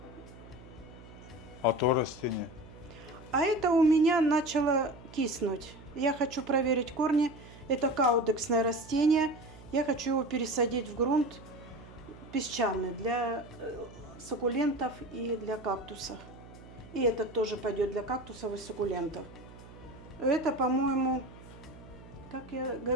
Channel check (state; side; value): noise; right; hum, 18 dB below the sound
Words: А то растение? А это у меня начало киснуть. Я хочу проверить корни. Это каудексное растение. Я хочу его пересадить в грунт песчаный для суккулентов и для кактусов. И этот тоже пойдет для кактусов и суккулентов. Это, по-моему, как я